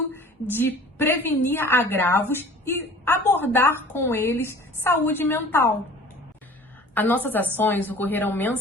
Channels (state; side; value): normal; both; correlation 0.46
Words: de prevenir agravos e abordar com eles saúde mental. As nossas ações ocorreram